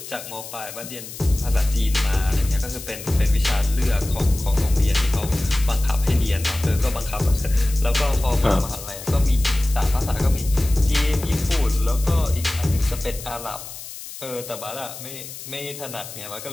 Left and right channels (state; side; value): noise; left; hiss, 12 dB below the sound